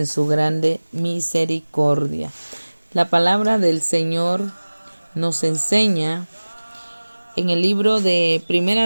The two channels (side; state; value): both; inverted; correlation -1.00